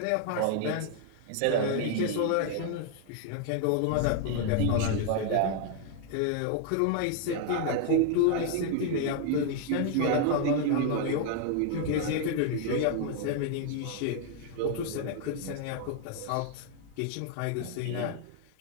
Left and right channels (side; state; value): both; different; correlation 0.00